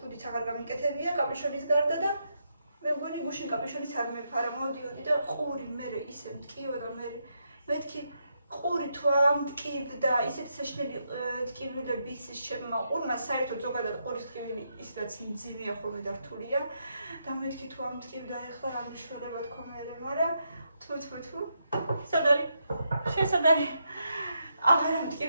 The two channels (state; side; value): inverted; both; correlation -0.81